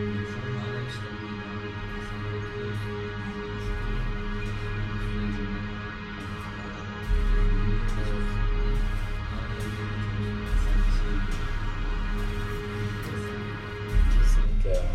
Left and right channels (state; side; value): identical; both; correlation 1.00